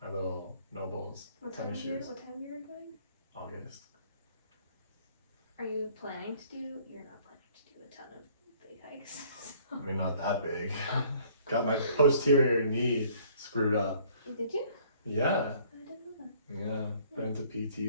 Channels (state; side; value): inverted; both; correlation -0.58